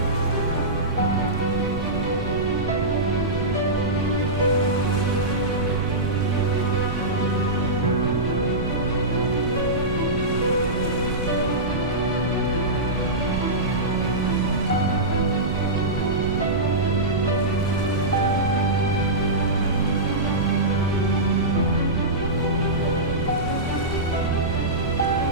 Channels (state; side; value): noise; right; rumble, 5 dB below the sound